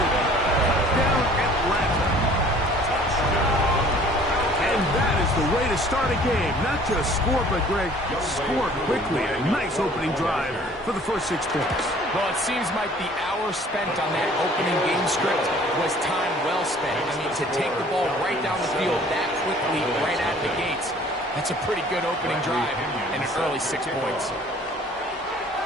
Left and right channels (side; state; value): both; normal; correlation 0.52